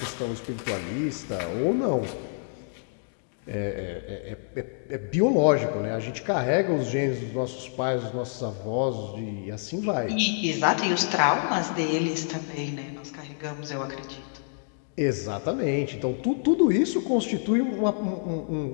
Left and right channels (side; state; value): right; silent; digital silence